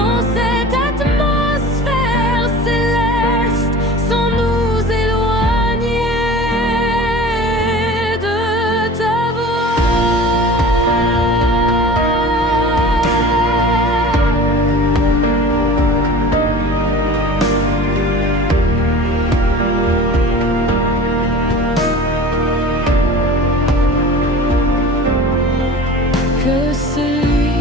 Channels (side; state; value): both; normal; correlation 0.39